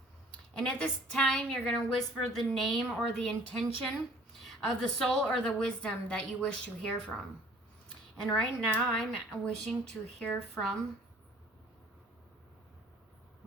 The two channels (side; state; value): both; normal; correlation 0.53